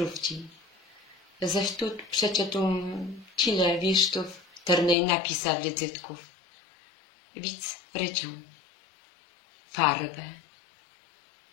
Zaś tu przeczytam tyle wisztów, ternej napisa wizytków. Widz ryczą. Farbę.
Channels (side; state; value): right; drops out; at 5.0 s